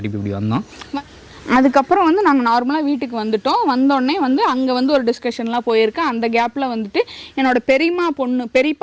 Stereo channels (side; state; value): both; identical; correlation 1.00